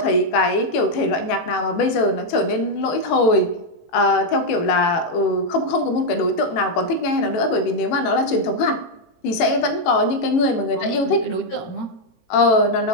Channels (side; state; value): right; late; 18 ms